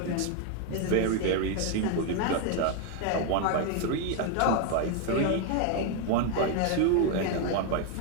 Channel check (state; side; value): different; both; correlation 0.01